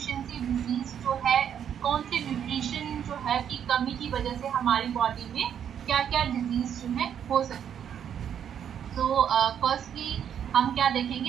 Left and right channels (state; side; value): quieter; left; 8.8 dB